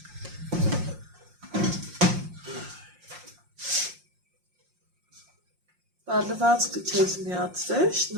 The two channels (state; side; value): late; left; 5.6 ms